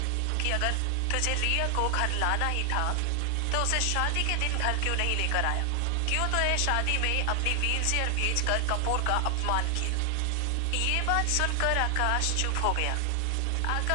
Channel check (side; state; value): both; different; correlation 0.00